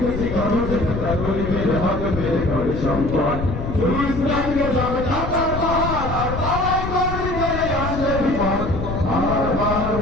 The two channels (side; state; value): left; noise; rumble, 5 dB below the sound